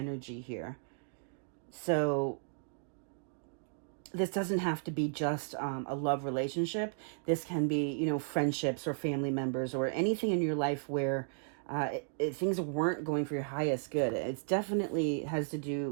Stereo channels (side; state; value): left; silent; digital silence